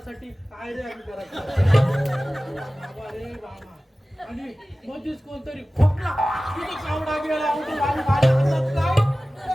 काय रे आम्ही करायचं बाबा रे बाबा आणि मध्येच कोणतरी खोकला तिथे कावडा गेला उठून आम्ही माझ्या हातात काय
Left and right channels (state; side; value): normal; both; correlation 0.97